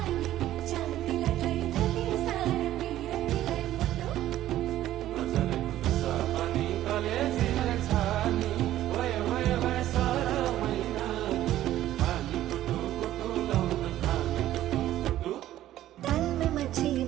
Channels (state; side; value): quieter; left; 13.4 dB